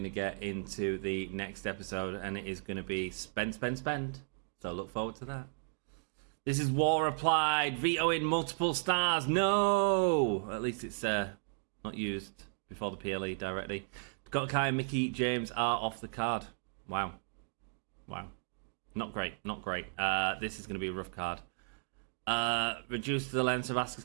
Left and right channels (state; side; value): silent; left; digital silence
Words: to get into the next episode, and it is going to be spend. So look forward to that. This is War Applied, vetoing multiple stars. No! At least it's not used before the PLE directly. Dakota Kai and Mickie James are off the card. Wow. Not great. This is going to be a rough card. Reduced the length of Asuka's